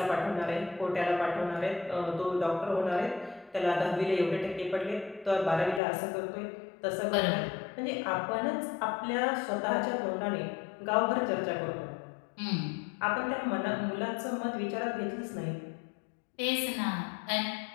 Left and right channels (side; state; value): right; drops out; at 5.8 s